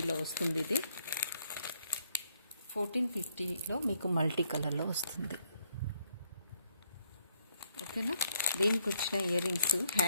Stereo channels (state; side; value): inverted; both; correlation -0.71